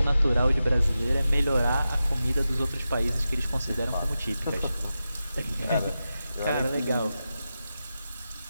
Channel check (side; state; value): both; inverted; correlation -0.92